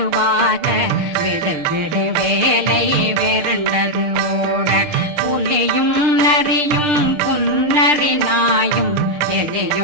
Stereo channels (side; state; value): left; late; 6.7 ms